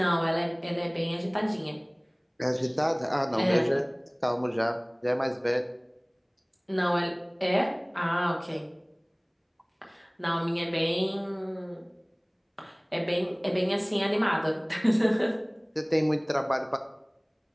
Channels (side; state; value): both; identical; correlation 1.00